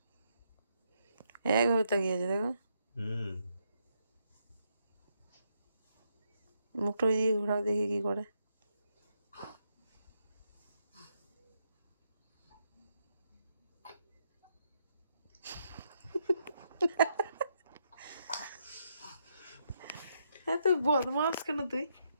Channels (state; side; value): inverted; both; correlation -0.78